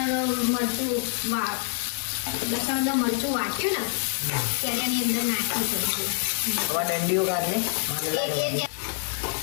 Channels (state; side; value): silent; right; 61 dB below the other